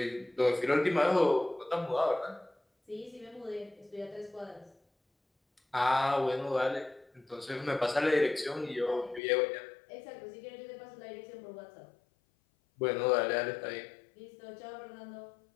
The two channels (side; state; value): right; drops out; at 9.2 s